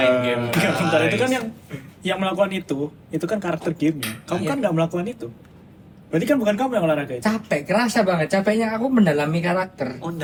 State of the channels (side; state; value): both; identical; correlation 1.00